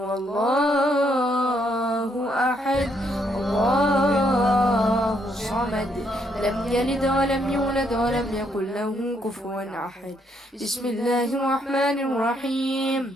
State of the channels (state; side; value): normal; both; correlation 0.73